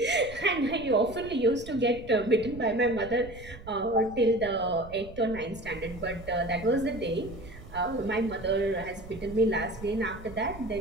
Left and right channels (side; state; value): right; noise; rumble, 16 dB below the sound